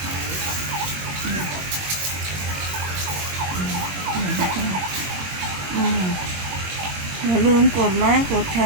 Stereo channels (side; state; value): left; late; 22 ms